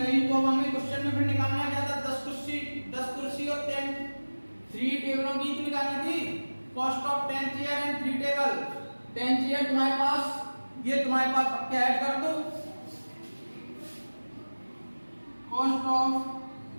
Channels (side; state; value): both; inverted; correlation -1.00